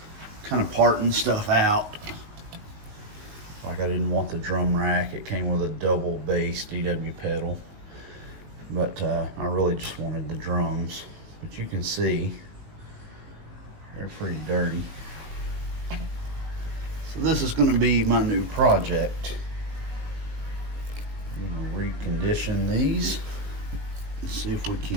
kind of parting stuff out. Like I didn't want the drum rack. It came with a double bass DW pedal, but I really just wanted the drums. But you can see they're pretty dirty. So this is going to be my new project. I'm going to recondition these. Let's see if we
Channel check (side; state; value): left; late; 19 ms